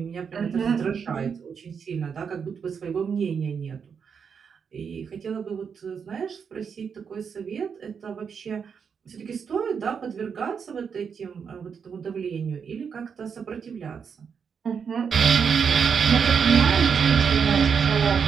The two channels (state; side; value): quieter; left; 6.6 dB